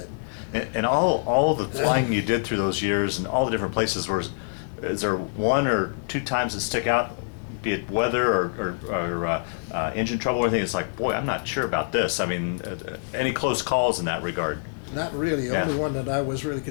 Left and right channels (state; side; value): silent; right; digital silence